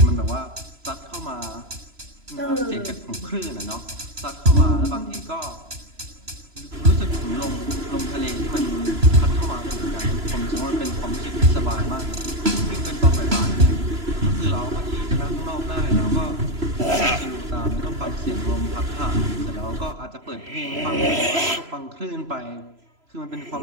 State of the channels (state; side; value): late; left; 3.0 ms